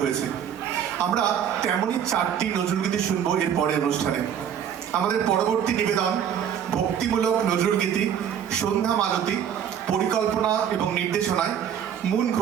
হয়েছে। আমরা তেমনই 4টি নজরুলগীতি শুনবো এর পরের অনুষ্ঠানে। আমাদের পরবর্তী নিবেদন ভক্তিমূলক নজরুলগীতি সন্ধ্যা মালতী, পরিকল্পনা এবং নির্দেশনায় মুন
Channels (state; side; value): quieter; left; 8.9 dB